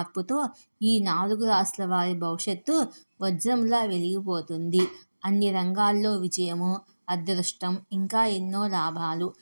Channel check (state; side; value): inverted; both; correlation -1.00